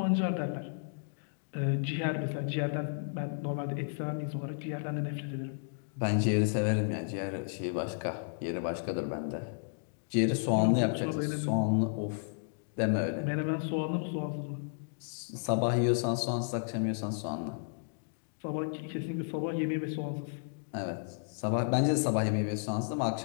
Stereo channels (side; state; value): right; silent; digital silence